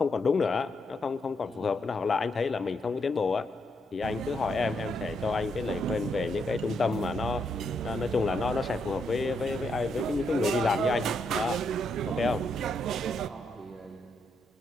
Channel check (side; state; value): both; normal; correlation 0.78